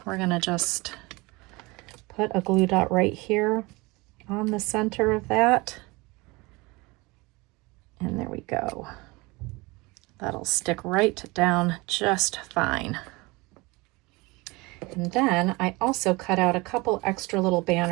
We're going to just put a glue dot right here on the center of that. And there we go. That'll stick right down just fine. And then I also cut out a couple extra little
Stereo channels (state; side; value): quieter; left; 24.2 dB